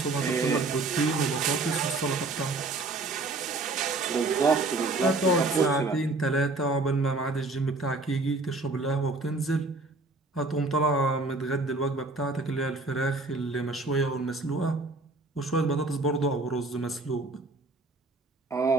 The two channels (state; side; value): quieter; left; 3.2 dB